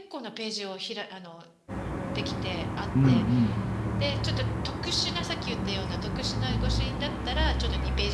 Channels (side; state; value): both; identical; correlation 1.00